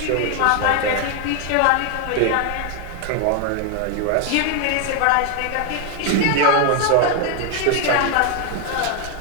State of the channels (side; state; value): both; different; correlation 0.01